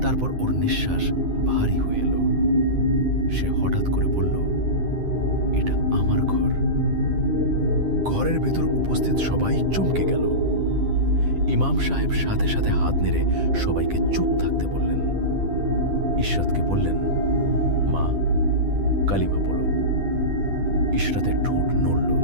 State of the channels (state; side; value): late; left; 10 ms